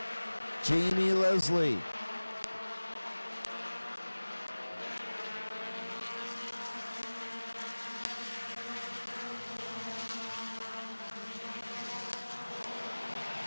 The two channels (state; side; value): inverted; both; correlation -1.00